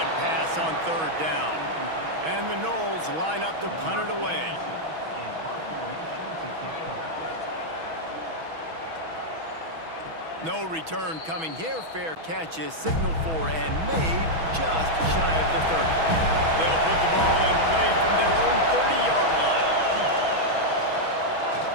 pass on 3rd down. And the Noles line up to punt it away. No return coming here. Fair catch is signaled for and made just shy of the 30. They'll put the ball in play from their own 30-yard line.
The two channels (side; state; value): left; late; 6.2 ms